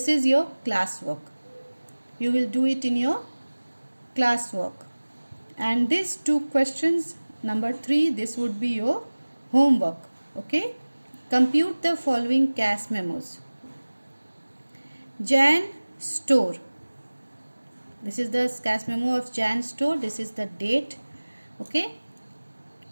is your class work. You will do it in your class work. And these 2 questions, number 3, this would be your homework. Okay. Compute the following cash memos. Jan Store. This is the cash memo of Jan Store. This is the date. Okay.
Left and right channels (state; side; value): inverted; both; correlation -1.00